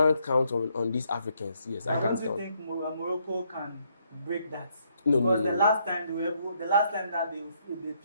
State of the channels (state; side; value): inverted; both; correlation -0.72